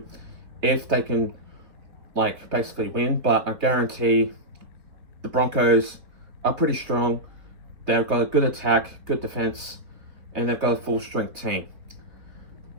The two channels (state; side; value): late; left; 3.4 ms